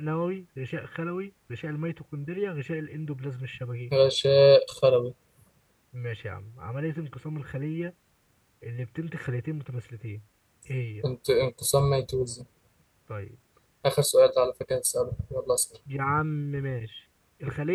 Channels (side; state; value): both; identical; correlation 1.00